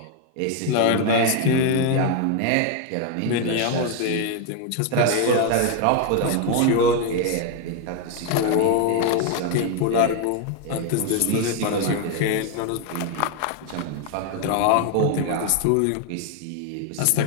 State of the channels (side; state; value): both; different; correlation 0.01